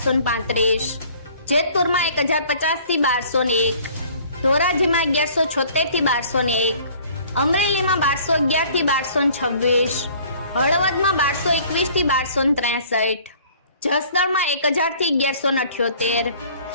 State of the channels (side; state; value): both; inverted; correlation -0.53